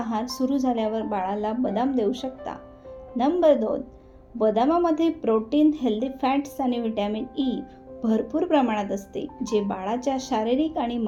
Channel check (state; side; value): identical; both; correlation 1.00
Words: सुरू झाल्यावर बाळाला बदाम देऊ शकता. नंबर 2, बदामामध्ये प्रोटीन, हेल्दी फॅट्स आणि व्हिटॅमिन ई भरपूर प्रमाणात असते, जे बाळाच्या शारीरिक आणि